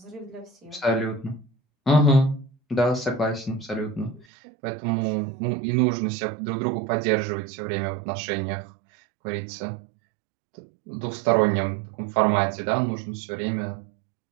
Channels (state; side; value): drops out; left; at 4.2 s